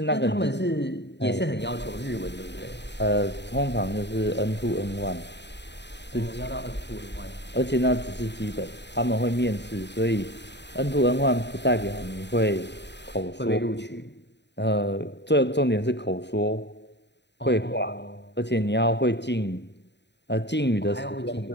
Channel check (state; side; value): late; right; 0.50 ms